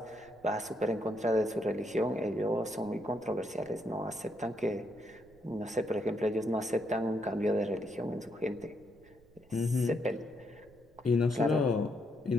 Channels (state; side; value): noise; right; rumble, 27 dB below the sound